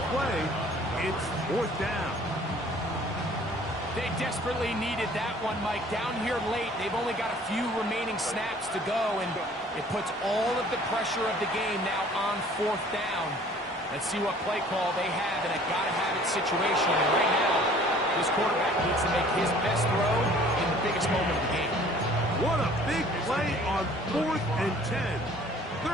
play. It's fourth down. They desperately needed that one, Mike. Down here late, they've only got a few remaining snaps to go, and it puts all of the pressure of the game now on fourth down. Let's see what play call they have in a gotta-have-it situation. And right now, this quarterback needs to make his best throw in the biggest moment of the game. What a big play on 4th and 10.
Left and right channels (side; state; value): both; normal; correlation 0.53